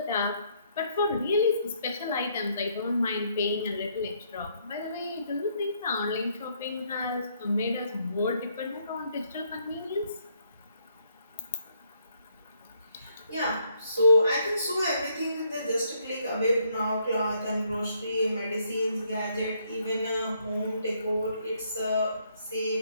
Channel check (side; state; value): both; inverted; correlation -0.71